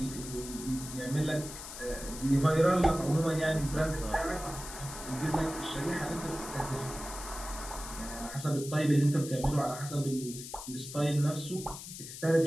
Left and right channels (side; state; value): left; noise; hiss, 11 dB below the sound